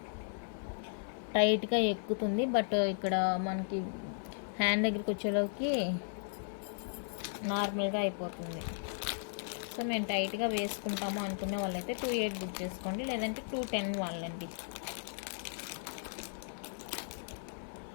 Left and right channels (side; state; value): right; silent; 54 dB below the other